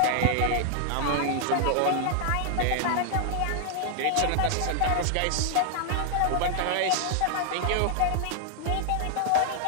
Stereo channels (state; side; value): different; both; correlation 0.00